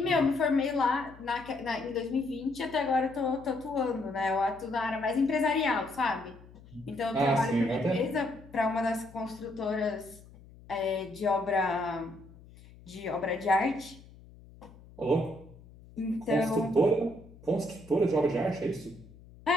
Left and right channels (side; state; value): left; noise; hum, 21 dB below the sound